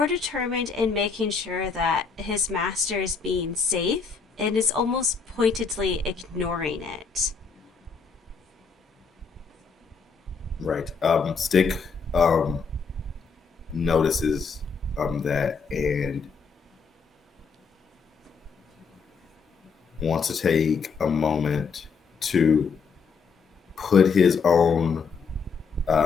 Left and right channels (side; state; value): right; quieter; 5.3 dB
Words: determined in making sure that his master is being safe and is almost pointedly ignoring it. Right. Stick notices that and wants to take a moment to put his own